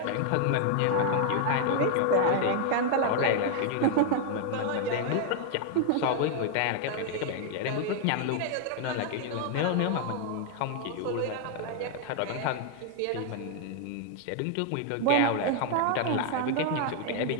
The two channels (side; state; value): both; different; correlation 0.00